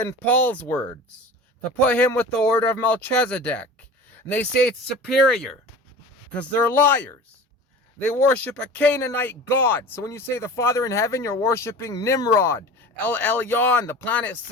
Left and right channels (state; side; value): normal; both; correlation 0.37